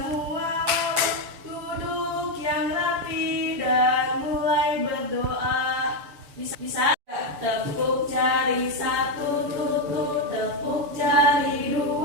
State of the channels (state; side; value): late; left; 7.0 ms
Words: wawa, duduk yang rapi dan mulai berdoa. Bisa? Tepuk jari satu tutut, tepuk jari